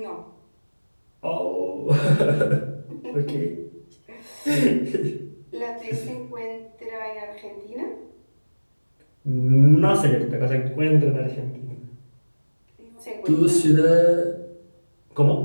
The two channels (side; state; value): both; inverted; correlation -1.00